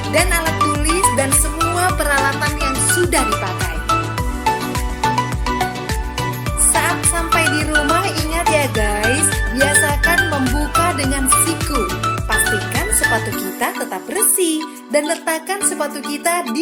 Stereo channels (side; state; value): both; identical; correlation 1.00